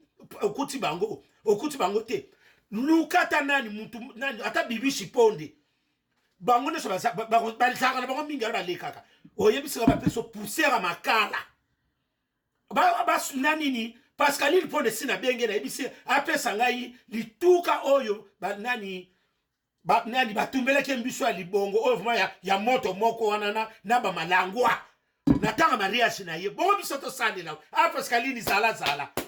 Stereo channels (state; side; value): identical; both; correlation 1.00